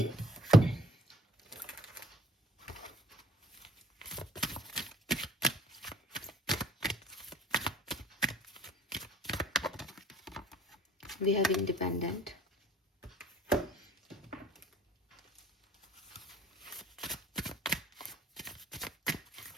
we have independent,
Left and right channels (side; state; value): both; normal; correlation 0.54